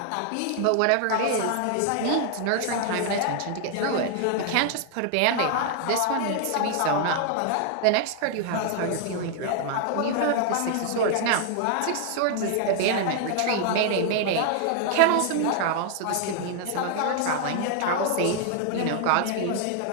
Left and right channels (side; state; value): both; different; correlation 0.00